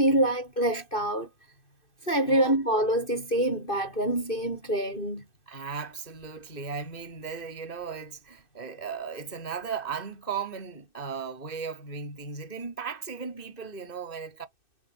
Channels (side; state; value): right; late; 2.6 ms